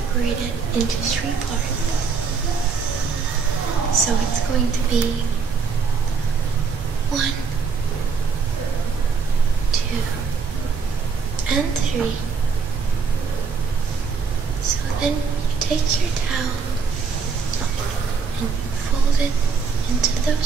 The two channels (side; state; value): left; quieter; 5.5 dB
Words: it into 3 parts. So it's going to be 1, 2, and 3. So then you take your towel and you fold it into